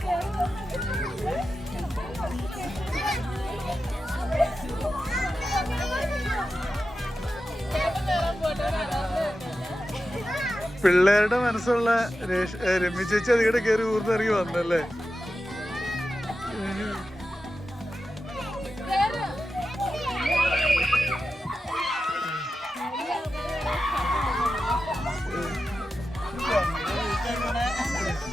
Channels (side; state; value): both; normal; correlation 0.91